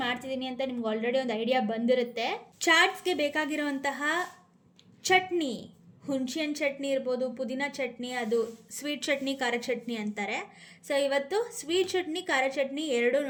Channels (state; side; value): identical; both; correlation 1.00